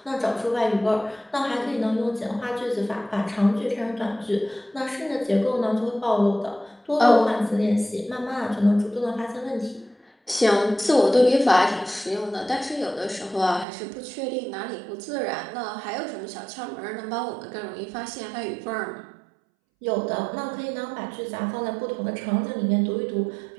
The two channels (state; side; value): drops out; left; at 13.7 s